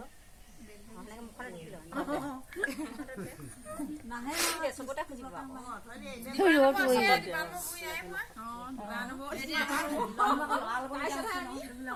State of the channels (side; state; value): both; identical; correlation 1.00